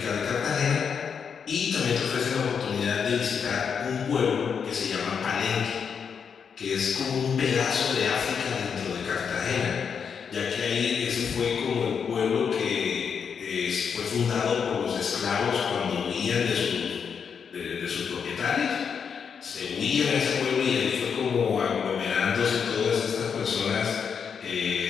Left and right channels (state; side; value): quieter; right; 6.7 dB